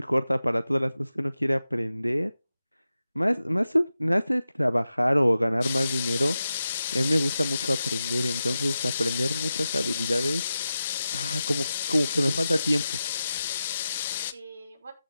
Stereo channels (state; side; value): inverted; both; correlation -0.91